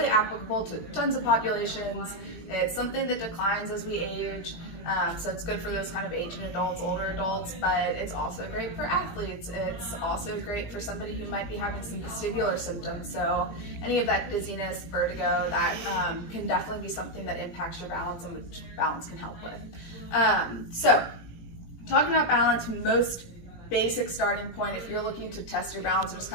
applicable to tons of populations. It's something that declines as we age. So it's good for those kind of aging adults, older adults, but it's also great for athletes. It's also great for somebody who might be having some vestibular symptoms. So any of that dizziness, vertigo, that can definitely be something that impacts your balance and which balance can help with. So talking about balance, most basic starting point, if you're looking to test your balance or just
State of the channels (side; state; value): right; late; 17 ms